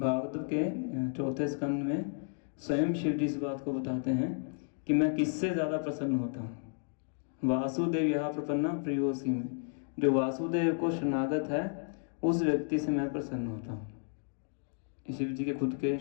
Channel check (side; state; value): right; silent; 56 dB below the other